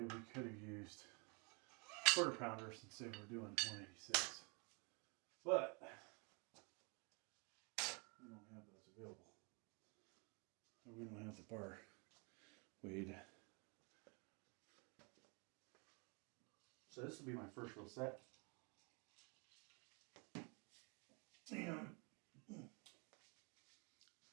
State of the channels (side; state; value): left; quieter; 32.9 dB